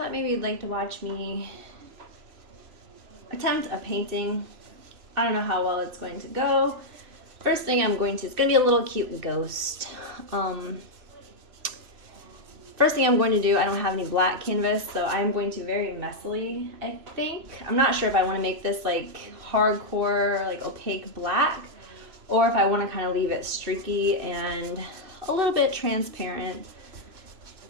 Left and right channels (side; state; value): left; late; 3.0 ms